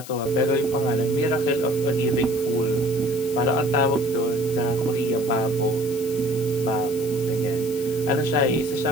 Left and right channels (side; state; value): left; noise; hiss, 15 dB below the sound